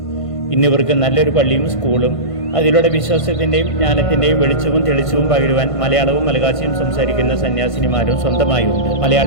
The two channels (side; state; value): right; late; 1.5 ms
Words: ഇന്നിവർക്ക് നല്ലൊരു പള്ളിയും സ്കൂളും അതിലൂടെ വിശ്വാസത്തിൻ്റെയും ജ്ഞാനത്തിൻ്റെയും വെളിച്ചവും തെളിച്ചവും പകരുവാൻ മലയാളവും മലയാളവും സംസാരിക്കുന്ന സന്യാസിനിമാരും സ്വന്തമായുണ്ട്.